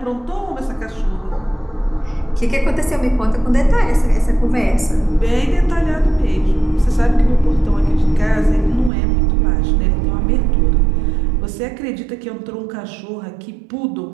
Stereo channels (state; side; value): drops out; left; at 8.9 s